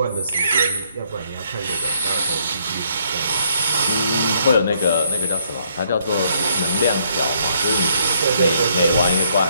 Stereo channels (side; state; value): both; inverted; correlation -0.69